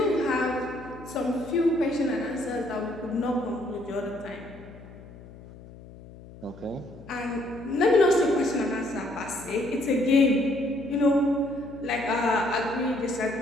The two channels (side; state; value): left; noise; hum, 18 dB below the sound